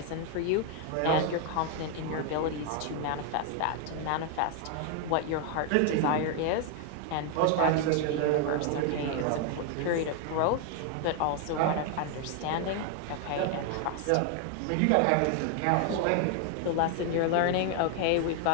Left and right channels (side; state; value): both; different; correlation 0.00